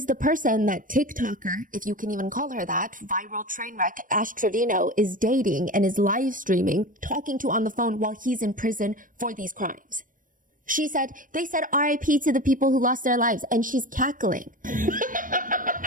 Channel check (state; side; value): late; left; 0.39 ms